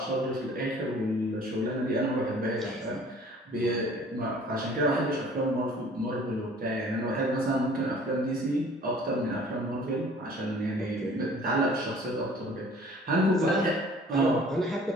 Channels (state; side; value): normal; both; correlation 0.51